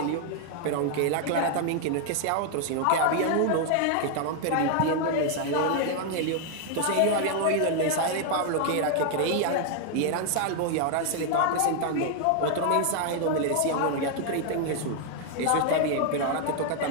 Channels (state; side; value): different; both; correlation 0.00